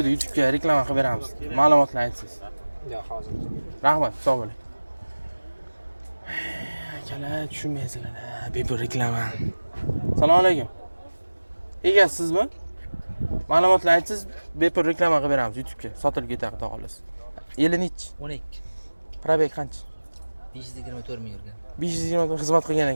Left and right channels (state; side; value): inverted; both; correlation -1.00